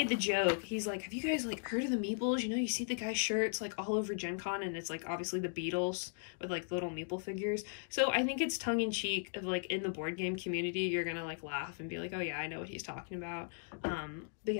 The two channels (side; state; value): right; silent; digital silence